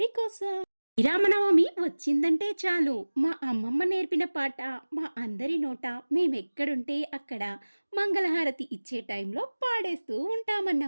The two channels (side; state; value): both; inverted; correlation -1.00